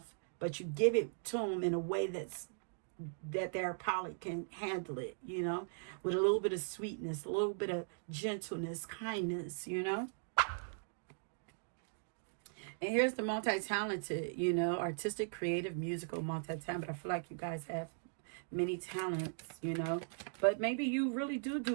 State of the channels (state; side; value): silent; left; digital silence